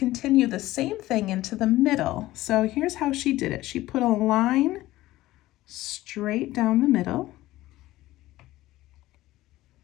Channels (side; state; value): right; quieter; 16.6 dB